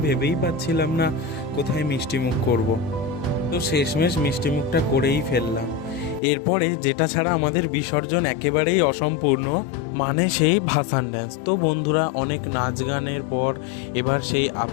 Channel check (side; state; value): right; drops out; at 6.2 s